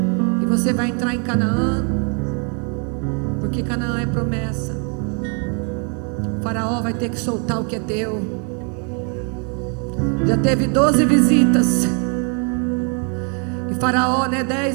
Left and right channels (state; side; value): quieter; left; 38.0 dB